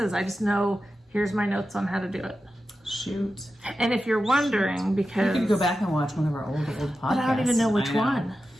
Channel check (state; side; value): normal; both; correlation 0.92